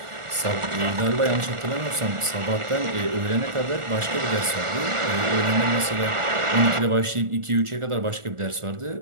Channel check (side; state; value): left; late; 1.4 ms